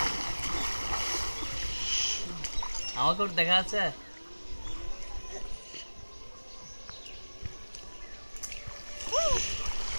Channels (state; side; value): inverted; both; correlation -1.00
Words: আমাকে ওটা দেখা যাচ্ছে।